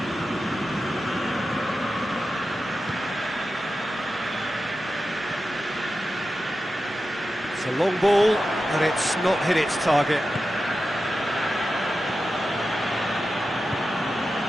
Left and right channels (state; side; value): normal; both; correlation 0.92